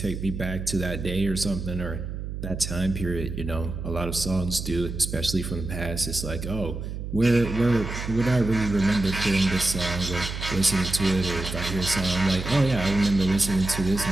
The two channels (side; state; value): right; noise; hum, 6 dB below the sound